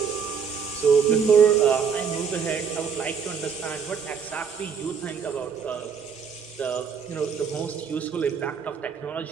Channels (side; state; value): left; quieter; 6.5 dB